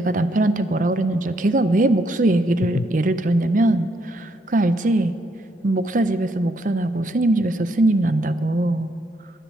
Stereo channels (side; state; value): both; normal; correlation 0.74